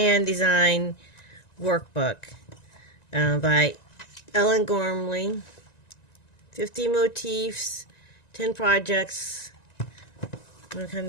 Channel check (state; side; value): late; right; 1.9 ms